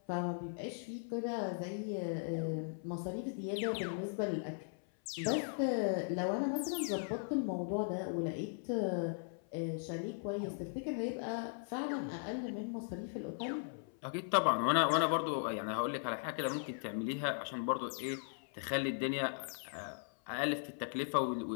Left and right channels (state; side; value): silent; right; 52 dB below the other